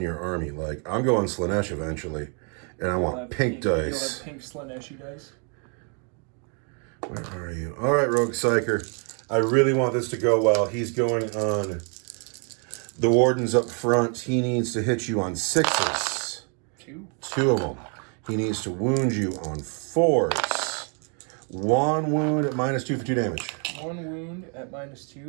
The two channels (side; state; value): left; quieter; 39.4 dB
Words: army. Like, I'm going Slanesh eventually. And I want pink dice. You'll have pink Slaneshi dice. Where are you? All right, Rogue Psyker. I really want this to go well. He's going on the Wardens up front. He needs to hit you on 6s. 2 of them. He needs to wound you on 4s. 1 wound at -2 for 2 damage. 1 wound at